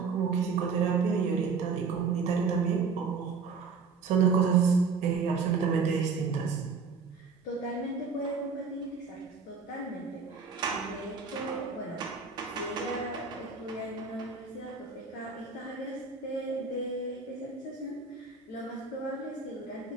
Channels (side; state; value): left; quieter; 5.2 dB